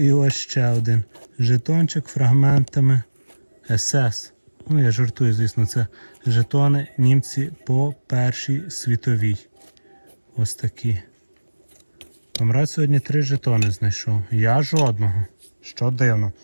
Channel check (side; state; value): both; inverted; correlation -1.00